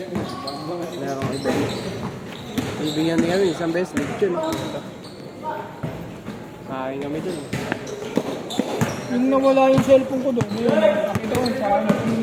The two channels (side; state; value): both; identical; correlation 1.00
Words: merong event. Ibigyan din kami, isang beses, lechon. Kain kami doon. Yung nawala yung cellphone ko doon, yun, nakita ko sa akin, yung